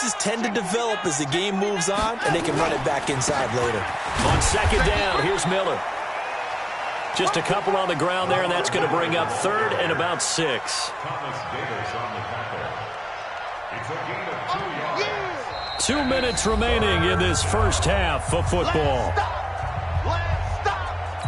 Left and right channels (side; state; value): both; identical; correlation 1.00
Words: tend to develop as the game moves on, and they can run it back inside later. On 2nd down, here's Miller. Just a couple on the ground there, and that's going to bring up 3rd and about 6. Thomas Davis on the tackle. It's a gain of 2 yards. 2 minutes remaining in this first half of football.